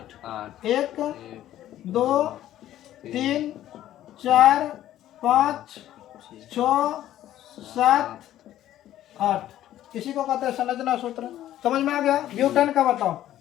1 2 3 4 5 6 7 8, इसी को कहते हैं संरचना सूत्र। समझ में आ गया। ब्यूटेन का बताओ,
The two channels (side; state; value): right; quieter; 12.8 dB